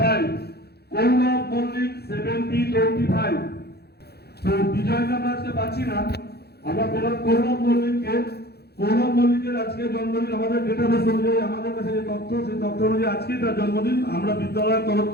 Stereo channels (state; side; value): late; right; 0.47 ms